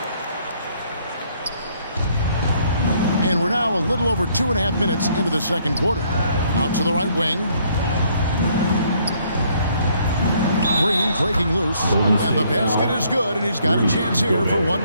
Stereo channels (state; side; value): inverted; both; correlation -0.66